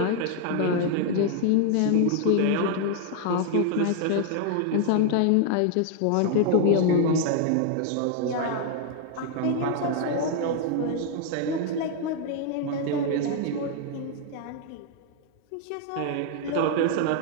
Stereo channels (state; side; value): different; both; correlation 0.00